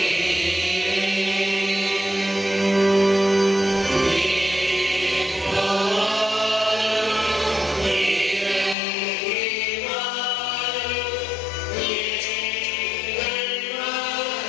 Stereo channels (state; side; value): drops out; right; at 8.8 s